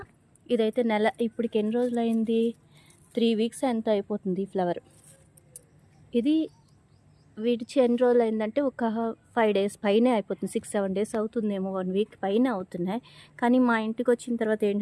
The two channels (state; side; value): identical; both; correlation 1.00